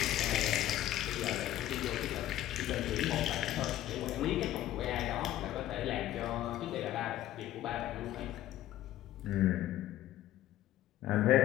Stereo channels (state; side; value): quieter; right; 13.6 dB